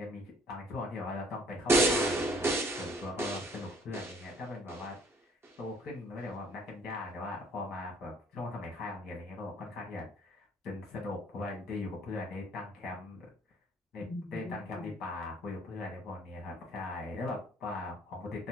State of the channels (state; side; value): normal; both; correlation 0.59